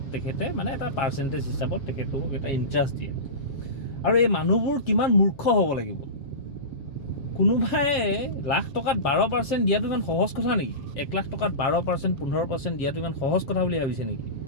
তেখেতে মানে এটা পাৰ্চেণ্টেজ হিচাপত তেখেতক এটা ইণ্টাৰেষ্ট দিয়ে। আৰু এই মানুহবোৰ কিমান মূৰ্খ হ'ব লাগিব, কোনোবাই লাখ টকাত 12% দিয়াটো ইমান সহজ কথা নেকি? 1 লাখ টকাত 12% 15% দিয়াটো ইমান সহজ কথা বুলি ভাবিছে নেকি?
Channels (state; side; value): late; right; 7.3 ms